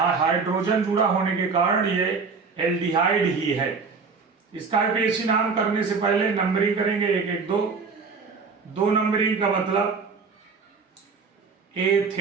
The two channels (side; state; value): left; quieter; 4.9 dB